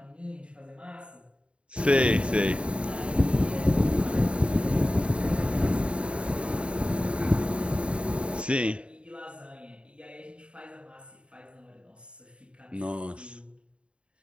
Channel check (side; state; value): left; late; 0.057 ms